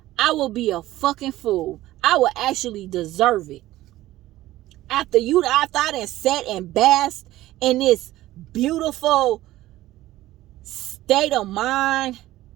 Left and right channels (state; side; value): quieter; left; 15.8 dB